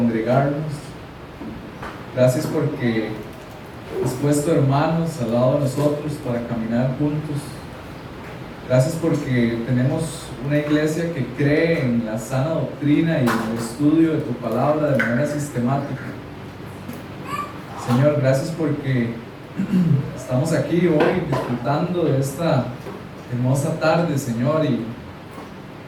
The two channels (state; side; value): identical; both; correlation 1.00